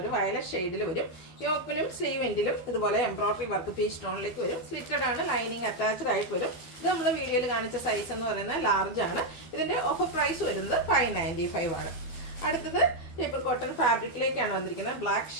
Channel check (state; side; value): late; right; 12 ms